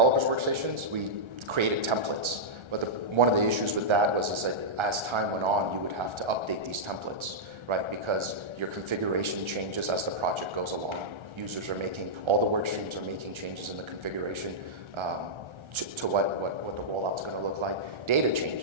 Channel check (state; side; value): late; left; 1.3 ms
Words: workstations, we created templates. But one of the issues with that was that as time went on, you would have to update these templates, right? Because your configuration changes as the project goes along. Users are all the work streams are making changes in the configuration to what the rollout's going to look like. Data